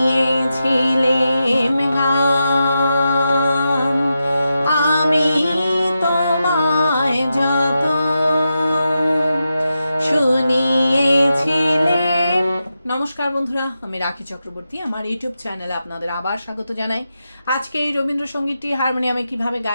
গান, আমি তোমায় যত শুনিয়েছিলেম। নমস্কার বন্ধুরা, আমি রাখি চক্রবর্তী। আমার ইউটিউব চ্যানেলে আপনাদের আবার স্বাগত জানাই। আজকে এই রবীন্দ্রসঙ্গীতটি হারমোনিয়ামে কিভাবে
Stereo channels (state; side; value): inverted; both; correlation -0.89